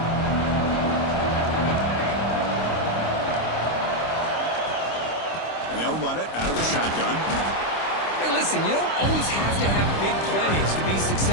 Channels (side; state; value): right; late; 26 ms